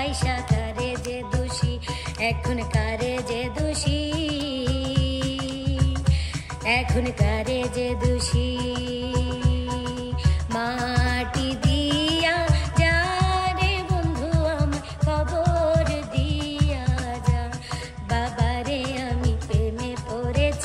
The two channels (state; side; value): identical; both; correlation 1.00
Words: কারে যে দোষী, এখন কারে যে দোষী, এখন কারে যে দোষী। মাটি দিয়া যা রে বন্ধু আমায় কবর দিয়া যা। বাবারে আমি প্রেমে